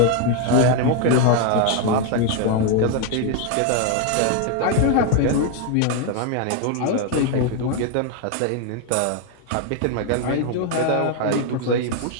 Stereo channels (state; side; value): different; both; correlation 0.01